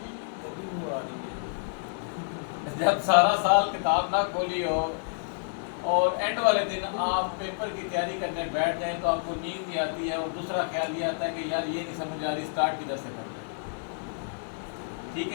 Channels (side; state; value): right; silent; digital silence